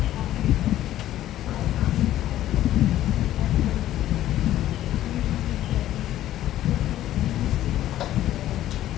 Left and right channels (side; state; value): right; quieter; 13.2 dB